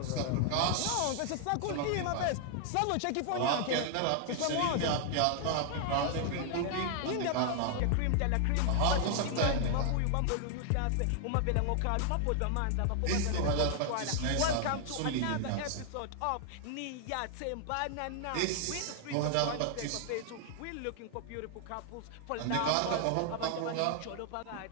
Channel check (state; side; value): different; both; correlation 0.00